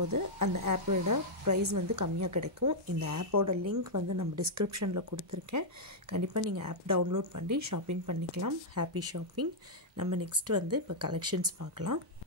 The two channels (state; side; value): normal; both; correlation -0.05